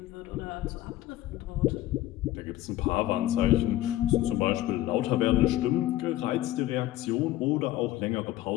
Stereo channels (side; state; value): right; quieter; 15.1 dB